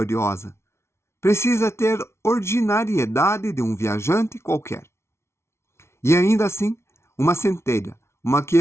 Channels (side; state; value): right; late; 0.13 ms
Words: Precisa ter ordinariedade de um viajante qualquer. E ainda assim, uma centelha, uma